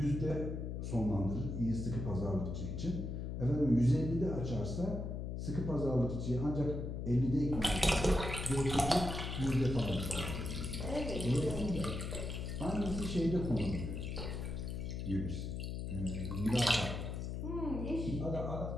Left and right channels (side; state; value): left; noise; hum, 4 dB below the sound